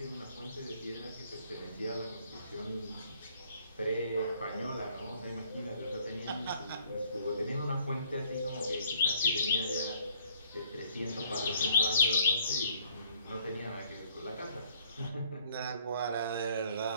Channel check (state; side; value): inverted; both; correlation -0.61